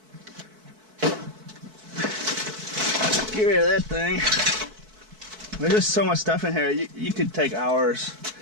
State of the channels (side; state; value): left; late; 4.6 ms